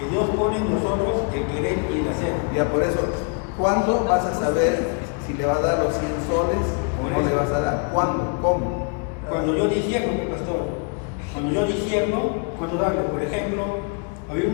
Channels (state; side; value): quieter; right; 35.8 dB